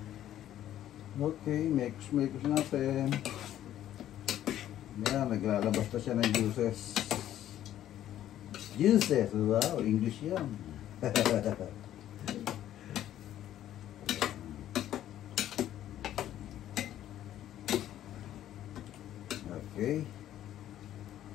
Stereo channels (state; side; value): quieter; right; 12.0 dB